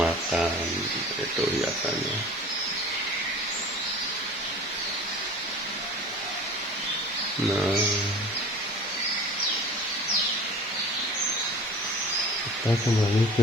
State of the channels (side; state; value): both; normal; correlation 0.42